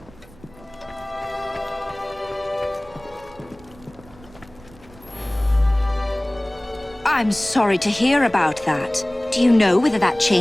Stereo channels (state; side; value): noise; right; rumble, 23 dB below the sound